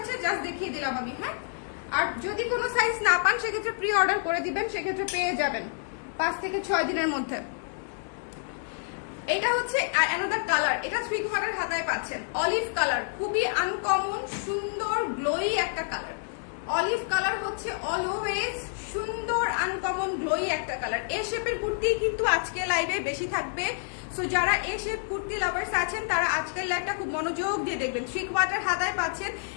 জাস্ট দেখিয়ে দিলাম আমি। হ্যাঁ, আর যদি কোনো সাইজ না পান সেক্ষেত্রে প্রি অর্ডার করে দিবেন, সেক্ষেত্রে পেয়ে যাবেন 5 থেকে 6 দিনের মধ্যে। এটা হচ্ছে অ্যানাদার কালার, এটা 3 কোয়ার্টার হাতায় পাচ্ছেন। অলিভ কালার, খুবই আনকমন সুন্দর গ্লোই একটা কালার। অলিভ কালার হচ্ছে অলওয়েজ সুন্দর আনকমন গ্লোই একটা কালার। এই শেপের কুর্তি কিন্তু আজকে লাইভে বেশি থাকবে। সো যারা এই শেপ কুর্তি লাভার্স আছেন তারা আজকের লাইভটা খুব মনোযোগ দিয়ে দেখবেন। 3 কোয়ার্টার হাতায় পাচ্ছেন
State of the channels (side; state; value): right; silent; digital silence